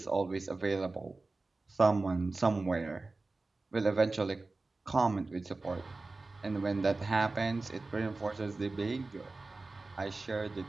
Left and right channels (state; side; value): quieter; left; 3.4 dB